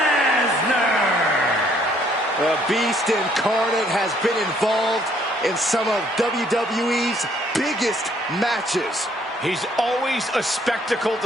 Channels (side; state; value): both; normal; correlation 0.65